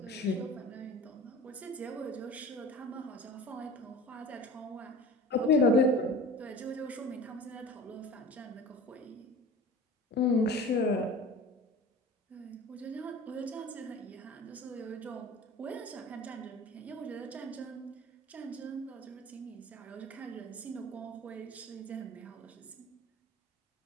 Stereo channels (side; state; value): both; normal; correlation 0.38